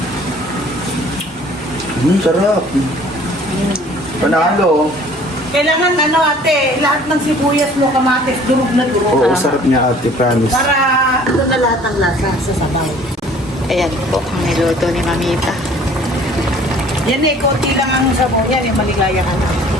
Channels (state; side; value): normal; both; correlation 0.52